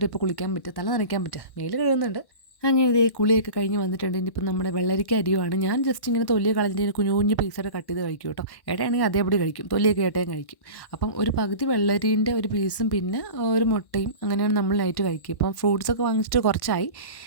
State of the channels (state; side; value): late; right; 1.5 ms